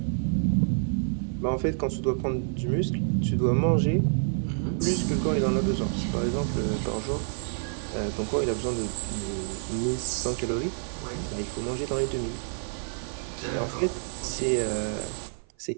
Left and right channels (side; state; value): left; silent; 55 dB below the other